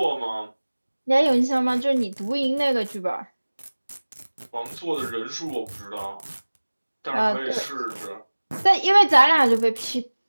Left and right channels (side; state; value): both; inverted; correlation -1.00